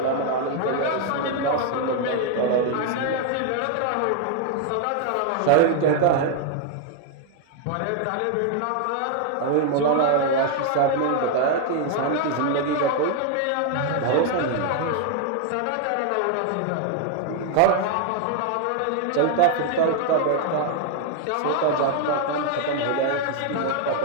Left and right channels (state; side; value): different; both; correlation 0.00